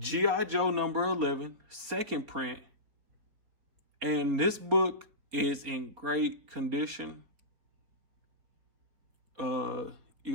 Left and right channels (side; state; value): left; late; 4.2 ms